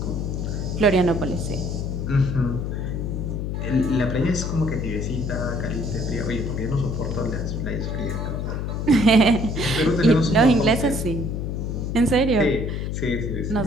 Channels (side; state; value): left; noise; hum, 3 dB below the sound